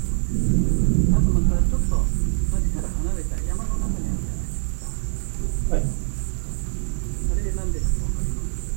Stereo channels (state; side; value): silent; left; digital silence